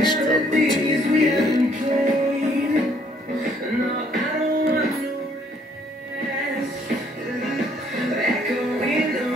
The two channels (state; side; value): normal; both; correlation 0.65